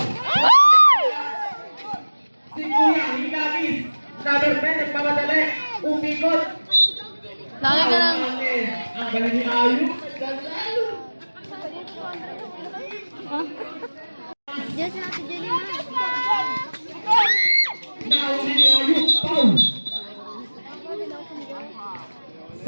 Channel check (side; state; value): both; inverted; correlation -1.00